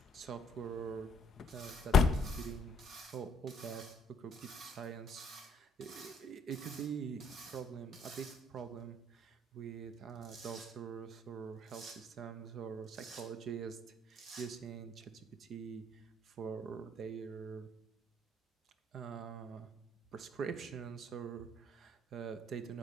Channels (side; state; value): both; normal; correlation 0.63